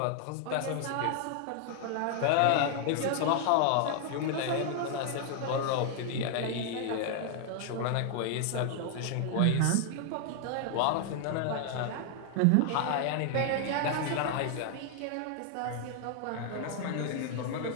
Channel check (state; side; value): different; both; correlation 0.00